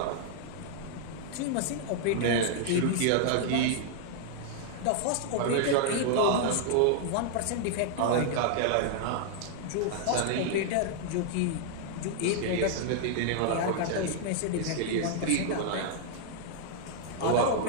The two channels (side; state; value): both; different; correlation -0.01